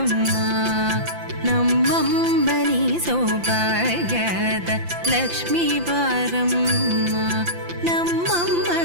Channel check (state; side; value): late; left; 5.8 ms